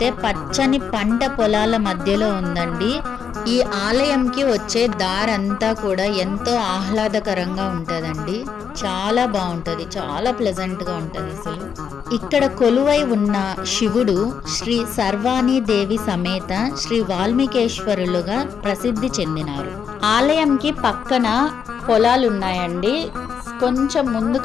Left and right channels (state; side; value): quieter; right; 7.1 dB